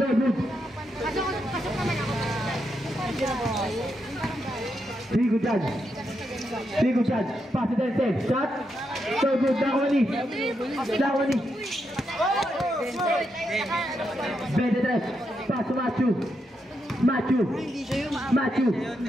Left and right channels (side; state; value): both; normal; correlation 0.82